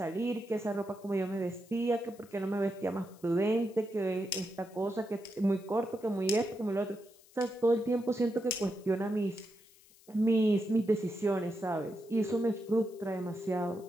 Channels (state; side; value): noise; left; hiss, 26 dB below the sound